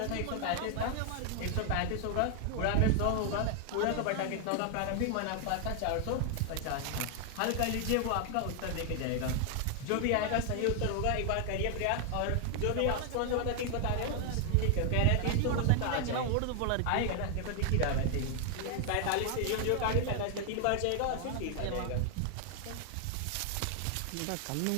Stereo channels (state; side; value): different; both; correlation 0.00